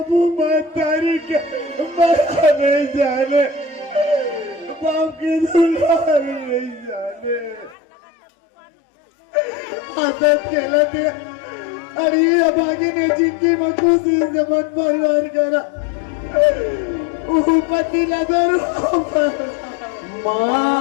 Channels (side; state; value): right; drops out; at 7.8 s